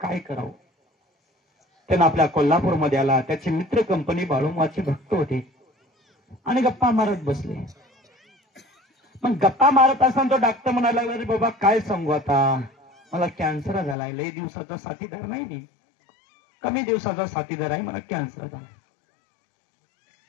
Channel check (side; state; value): right; drops out; at 14.0 s